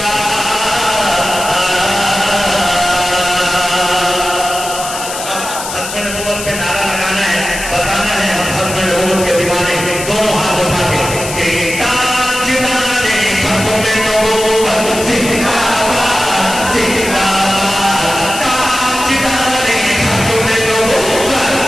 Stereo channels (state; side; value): noise; left; hiss, 8 dB below the sound